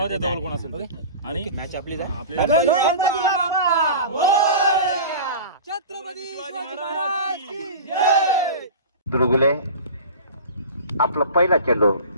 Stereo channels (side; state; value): both; inverted; correlation -0.34